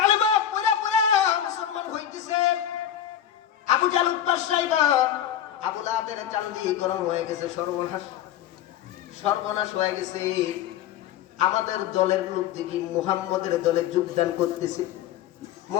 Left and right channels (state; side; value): quieter; right; 10.6 dB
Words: পড়ে পড়ে মুসলমান হইতেছে, আবু জাহল উৎপাত সাইবা আবু লাহাবের চান্দি গরম হয়ে গেছে, সর্বনাশ হয়ে গেছে। আমাদের দলের লোক দেখি মুহাম্মদের দলে যোগদান করতেছে।